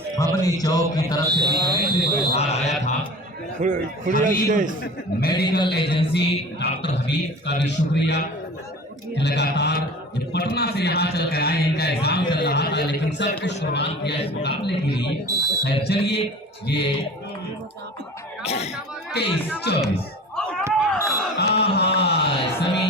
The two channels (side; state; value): both; normal; correlation 0.39